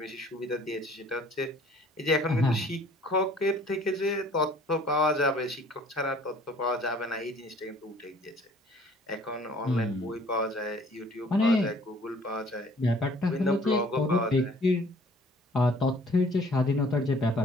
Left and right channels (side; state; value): both; normal; correlation 0.55